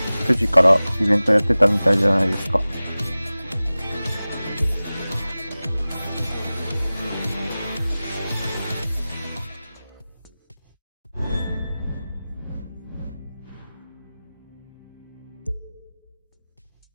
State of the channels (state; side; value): inverted; both; correlation -0.97